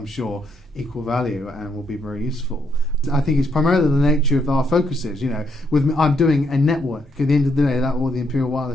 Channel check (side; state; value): both; normal; correlation 0.75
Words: sure, equal value and will be very useful. I think it's primarily the nature of our focuses. You know, I'm doing a network. At the end of the day, that all the Imperial